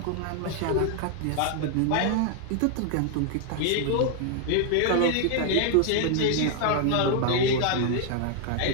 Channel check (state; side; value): different; both; correlation 0.00